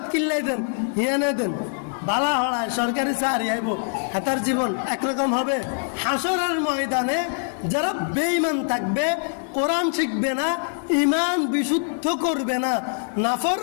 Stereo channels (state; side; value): silent; right; 63 dB below the other